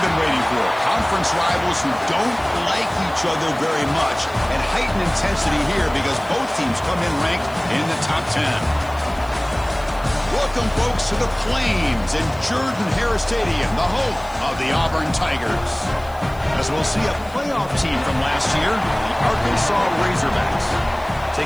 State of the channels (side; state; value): left; noise; hiss, 25 dB below the sound